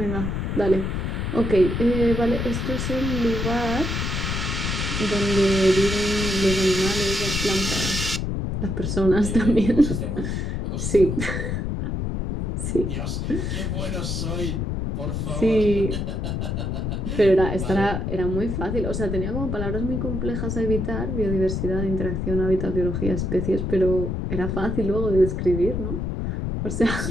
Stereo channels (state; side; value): noise; left; rumble, 2 dB below the sound